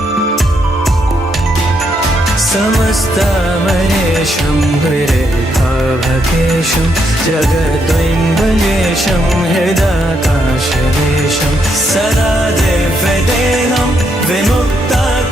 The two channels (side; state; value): both; normal; correlation 0.77